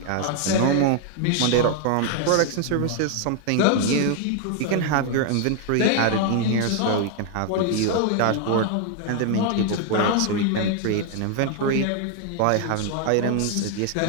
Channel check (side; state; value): both; different; correlation 0.00